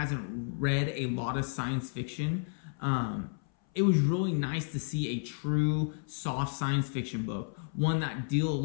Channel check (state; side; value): silent; right; 57 dB below the other